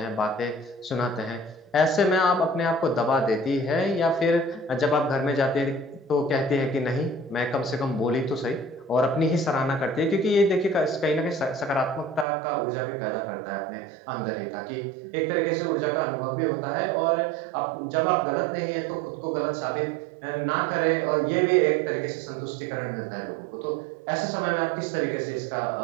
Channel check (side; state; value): left; drops out; at 12.2 s